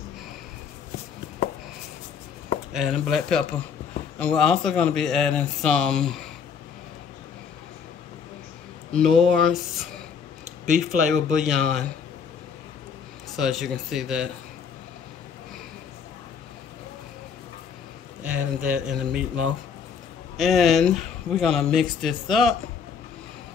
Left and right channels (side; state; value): right; quieter; 6.6 dB